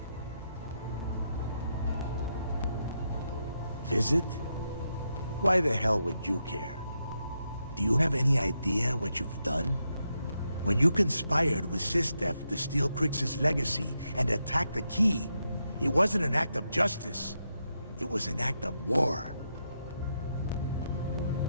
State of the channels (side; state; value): both; inverted; correlation -0.83